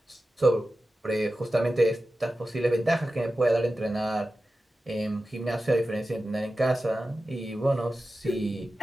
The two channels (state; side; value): normal; both; correlation 0.94